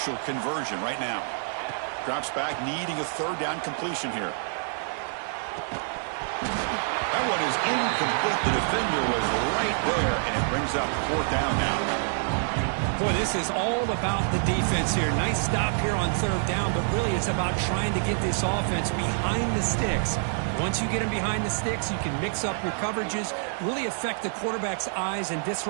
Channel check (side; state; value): left; silent; digital silence